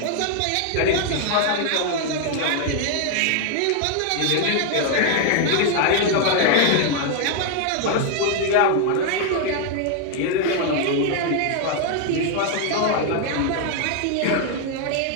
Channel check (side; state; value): both; different; correlation 0.00